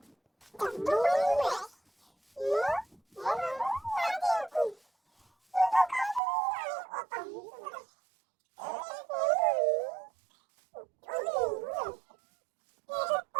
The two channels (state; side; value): drops out; left; at 6.2 s